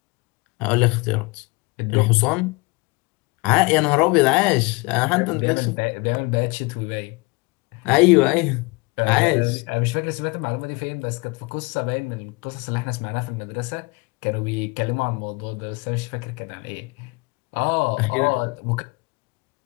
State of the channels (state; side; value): quieter; right; 26.9 dB